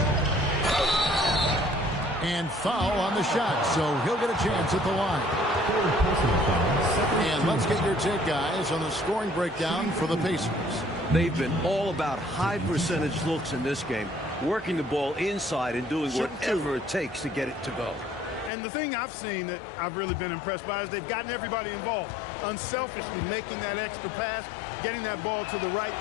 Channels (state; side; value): drops out; right; at 18.5 s